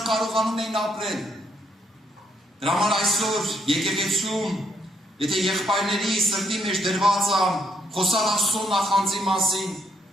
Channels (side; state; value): both; normal; correlation 0.73